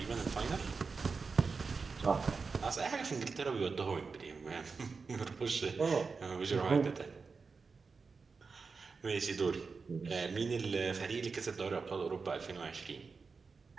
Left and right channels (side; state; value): left; quieter; 4.7 dB